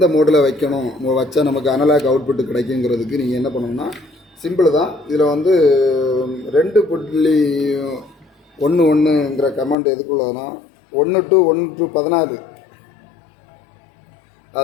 மோடில் வைக்கணும் வச்சா நமக்கு அனலாக் அவுட்புட் கிடைக்குங்கிறதுக்கு நீங்கள் என்ன பண்ணணும்னா சிம்பிள் தான். இதில் வந்து 2.11ங்கிற கமாண்ட் எதுக்குள்ளதுன்னா 1 to 16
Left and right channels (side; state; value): right; drops out; at 9.8 s